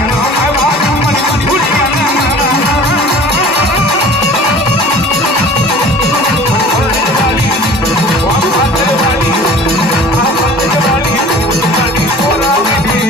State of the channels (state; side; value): normal; both; correlation 0.45